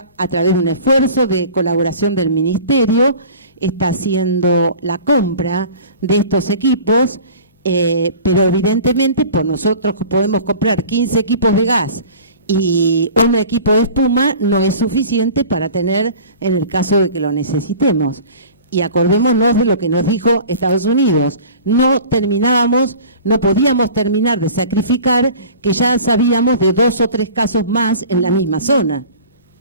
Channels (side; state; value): both; inverted; correlation -0.42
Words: a través de un esfuerzo de colaboración del Ministerio, está haciendo la compra de estos equipos, pero evidentemente por nosotros podemos comprar 15 equipos de gas y un equipo de espuma no es suficiente para tener en el caso de que lo necesitemos. Y acordémonos de lo que nos dijo Estados Unidos. No podíamos terminar de sacrificar, que ya sabíamos de 2 o 3 casos más en la misma zona.